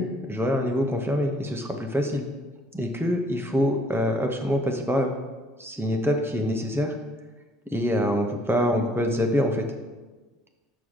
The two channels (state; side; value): normal; both; correlation 0.63